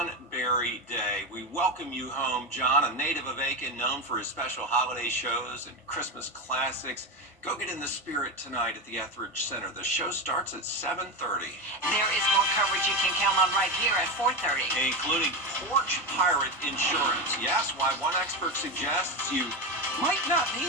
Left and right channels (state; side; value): normal; both; correlation 0.17